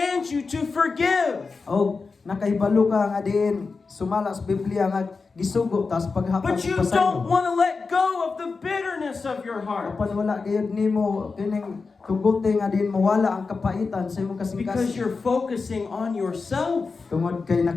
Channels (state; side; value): quieter; right; 4.5 dB